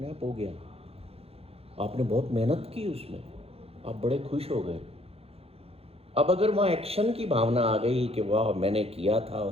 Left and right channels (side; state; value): left; late; 0.29 ms